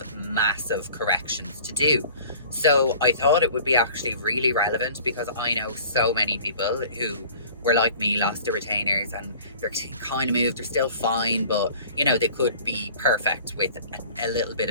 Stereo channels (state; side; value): inverted; both; correlation -0.47